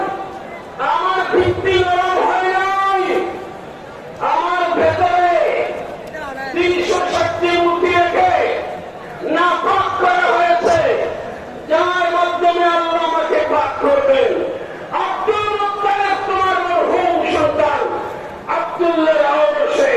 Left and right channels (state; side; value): identical; both; correlation 1.00